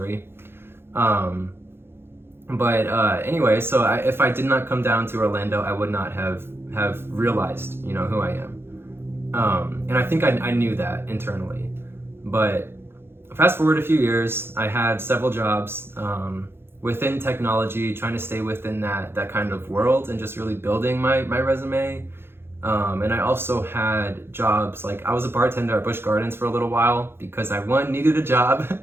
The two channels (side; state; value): left; late; 0.11 ms